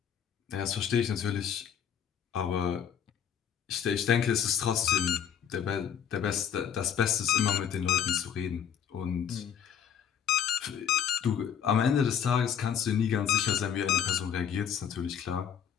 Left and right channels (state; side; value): quieter; right; 8.4 dB